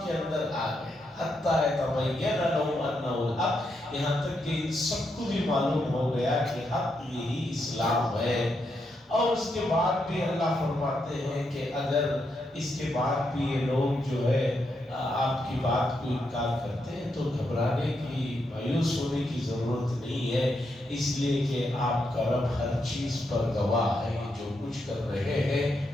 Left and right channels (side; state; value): both; normal; correlation 0.81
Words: کے اندر آ گئے۔ حتیٰ یتبین لہم انہ الحق، یہاں تک کہ ان سب کو بھی معلوم ہو گیا کہ حق یہی اسلام ہے۔ اور اس کے بعد بھی اللہ فرماتے ہیں کہ اگر اس کے بعد بھی یہ لوگ جو ہے آپ کی بات کو انکار کرتے ہیں تو گھبرانے کی، مایوس ہونے کی ضرورت نہیں ہے، اس لیے کہ آپ کا رب ہر چیز پر گواہ ہے، جو کچھ کر رہے